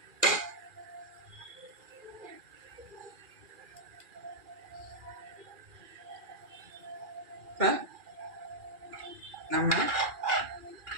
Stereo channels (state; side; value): late; left; 2.4 ms